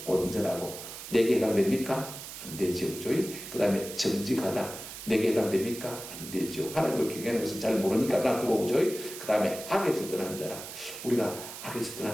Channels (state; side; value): noise; right; hiss, 11 dB below the sound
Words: 온전하고. 내게 해당됩니까? 안 되죠. 그 다음에 정직하다. 내게 해당됩니까? 안 되죠. 하나님을 경외하는 것은 잘 모르니까 놔두고 오죠. 그 다음에 악에서 떠난 자라. 우리가 악에서